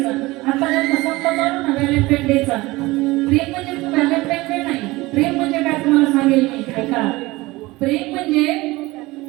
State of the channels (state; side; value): quieter; left; 20.7 dB